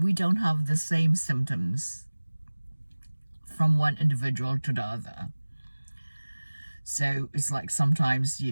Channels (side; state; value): both; inverted; correlation -1.00